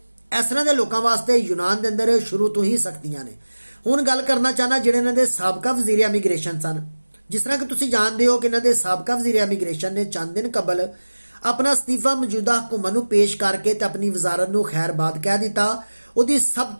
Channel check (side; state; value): both; inverted; correlation -1.00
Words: ਇਸ ਤਰ੍ਹਾਂ ਦੇ ਲੋਕਾਂ ਵਾਸਤੇ यूनान ਦੇ ਅੰਦਰ ਸ਼ੁਰੂ ਤੋਂ ਹੀ ਸਖਤੀਆਂ ਨੇ। ਹੁਣ ਗੱਲ ਕਰਨਾ ਚਾਹਨਾ ਜਿਹੜੇ ਇਹਨਾਂ ਦੇ ਸਾਬਕਾ ਵਜ਼ੀਰ ਇਮੀਗ੍ਰੇਸ਼ਨ ਸਨ। ਜਿਸ ਤਰ੍ਹਾਂ ਕਿ ਤੁਸੀਂ ਜਾਣਦੇ ਹੋ ਕਿ ਇਹਨਾਂ ਦੇ ਸਾਬਕਾ ਵਜ਼ੀਰ ਇਮੀਗ੍ਰੇਸ਼ਨ ਨੇ ਚੰਦ ਦਿਨ ਕਬਲ ਆਪਣਾ ਅਸਤੀਫਾ ਮੌਜੂਦਾ ਹਕੂਮਤ ਨੂੰ ਪੇਸ਼ ਕਰਕੇ ਤੇ ਆਪਣੀ ਵਜ਼ਾਰਤ ਨੂੰ ਖੈਰਬਾਦ ਕਹਿ ਦਿੱਤਾ। ਉਹਦੀ ਸਭ